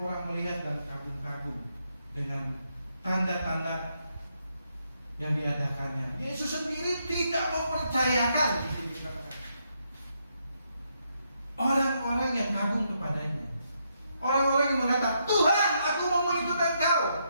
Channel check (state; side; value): inverted; both; correlation -0.78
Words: orang melihat dan kagum-kagum dengan tanda-tanda yang diadakannya. Yesus sendiri tidak mempercayakan di sini. Orang-orang yang kagum kepadanya, orang-orang yang mengatakan, "Tuhan, aku mau mengikut engkau.